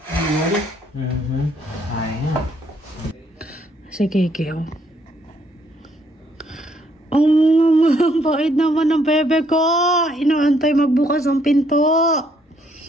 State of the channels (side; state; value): both; normal; correlation 0.69